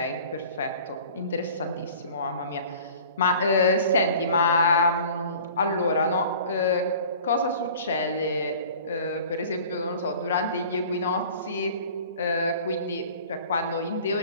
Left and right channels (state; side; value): inverted; both; correlation -0.46